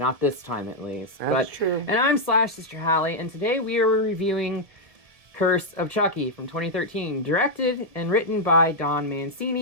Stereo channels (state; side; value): late; left; 1.7 ms